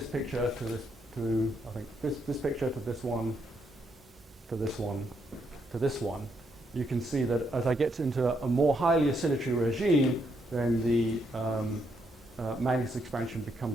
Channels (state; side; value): normal; both; correlation 0.76